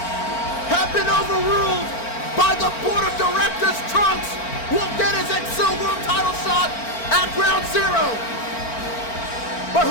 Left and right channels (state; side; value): late; right; 4.4 ms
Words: have been overruled by the board of directors. Trunks will get his Excel World title shot at Ground Zero. But